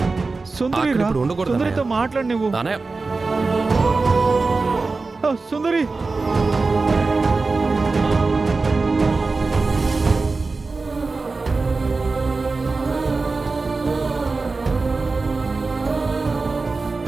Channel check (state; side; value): quieter; left; 3.9 dB